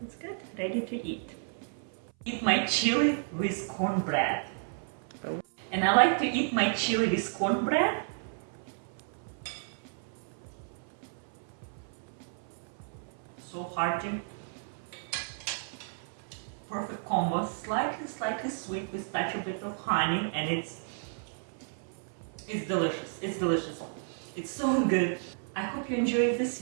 it's good, ready to eat. Eat my chili with cornbread. And I like to eat my chili with cornbread. So hearty. Perfect combo, slightly sweet with touch a bit of honey, and it's delicious. It's delicious. It's so good. I hope you enjoyed this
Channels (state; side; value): silent; left; 56 dB below the other